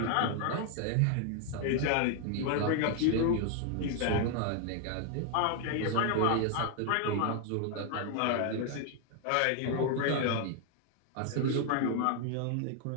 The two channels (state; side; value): different; both; correlation 0.00